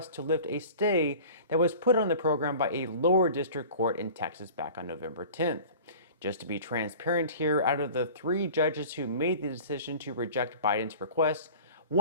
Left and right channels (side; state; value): both; inverted; correlation -0.41